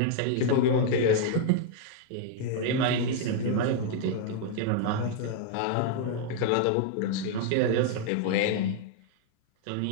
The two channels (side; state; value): both; different; correlation -0.01